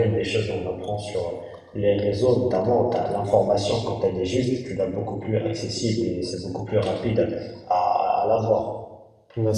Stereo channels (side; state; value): both; identical; correlation 1.00